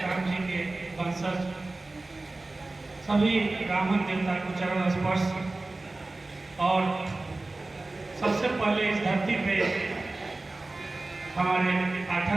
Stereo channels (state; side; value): quieter; left; 3.1 dB